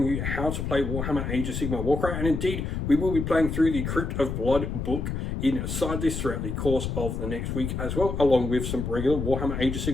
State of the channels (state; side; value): noise; left; rumble, 3 dB below the sound